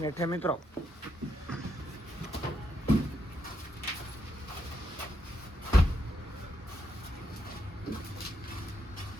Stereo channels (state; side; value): normal; both; correlation 0.79